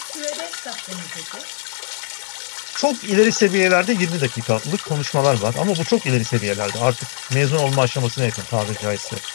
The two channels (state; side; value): silent; right; digital silence